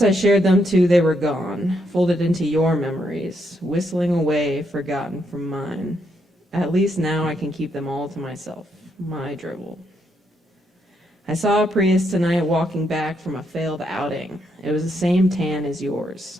I shared them too, they were gone, folded into your memories, whistling away, forgotten from mine. At least now I can keep them all to myself. My dribble. I saw a Prius tonight walking back from a failed outing. It was the same tan as yours.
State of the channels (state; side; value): normal; both; correlation 0.77